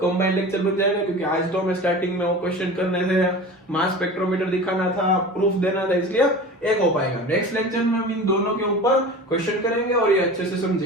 कंबाइंड लेक्चर बन जाएगा, क्योंकि आज तो मैं स्टार्टिंग में वो क्वेश्चन करने थे, मास स्पेक्ट्रोमीटर दिखाना था, प्रूफ देना था, इसलिए एक हो पाएगा। नेक्स्ट लेक्चर में हम इन दोनों के ऊपर क्वेश्चन करेंगे और ये अच्छे से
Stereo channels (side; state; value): both; normal; correlation 0.35